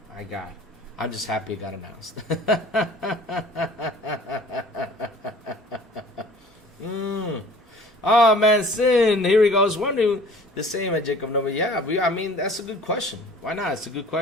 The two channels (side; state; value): both; normal; correlation 0.48